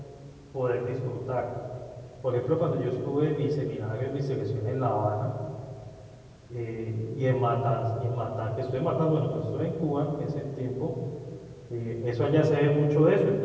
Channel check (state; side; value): identical; both; correlation 1.00